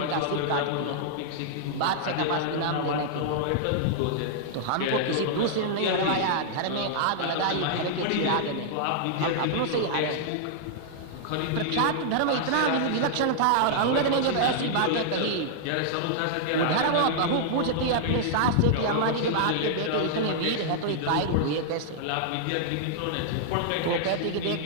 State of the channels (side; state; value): both; different; correlation -0.01